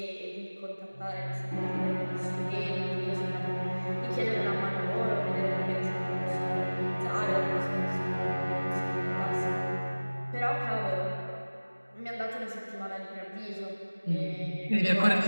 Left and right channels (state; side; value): inverted; both; correlation -1.00